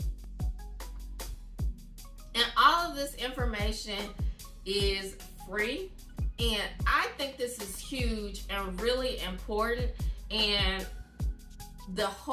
And all of this information is free. And I think this is huge and really important. And the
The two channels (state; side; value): identical; both; correlation 1.00